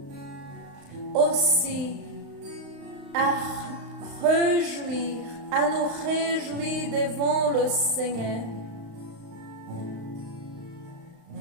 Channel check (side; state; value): left; late; 35 ms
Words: aussi à réjouir, à nous réjouir devant le Seigneur,